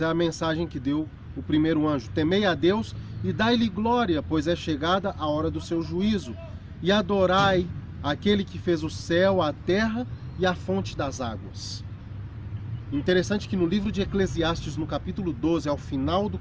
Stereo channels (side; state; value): both; identical; correlation 1.00